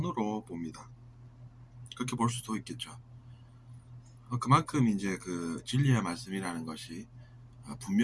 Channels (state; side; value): identical; both; correlation 1.00